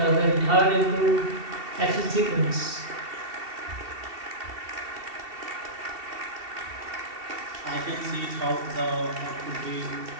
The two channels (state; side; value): late; left; 2.7 ms